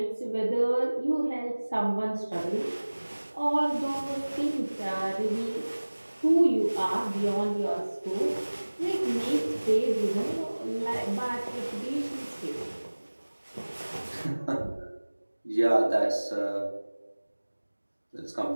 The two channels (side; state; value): both; inverted; correlation -1.00